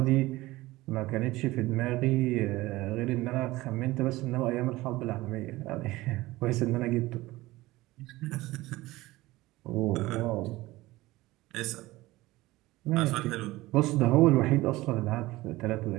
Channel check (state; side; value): quieter; left; 18.8 dB